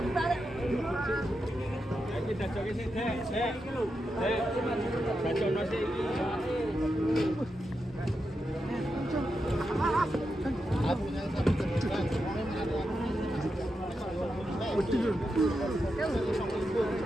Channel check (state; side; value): normal; both; correlation 0.87